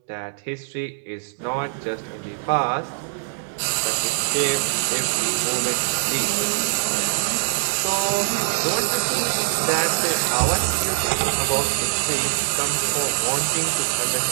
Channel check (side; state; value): left; silent; digital silence